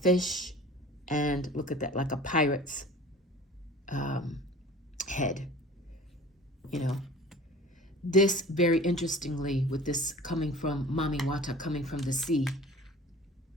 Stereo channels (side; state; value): both; normal; correlation 0.43